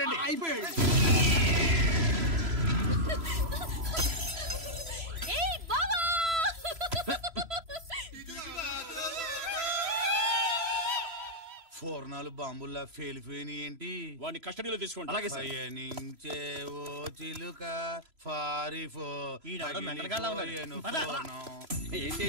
అయిపోయాడు. ఫోర్నాలు బాంబుల్లా ఫేలిపోయినాయి ఏంటి? వాడిని కస్టడీలో తీసుకోండి. అలాగే పయనించే ఓ చిలుక పారిపో. ఏంటి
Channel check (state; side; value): late; left; 3.0 ms